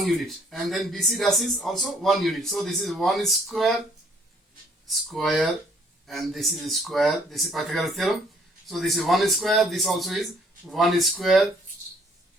unit, and then BC dash is also 1 unit. So this is 1 square, and this is square. This is Pythagoras theorem. So this is 1 square. This also is 1 square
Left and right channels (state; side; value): normal; both; correlation 0.62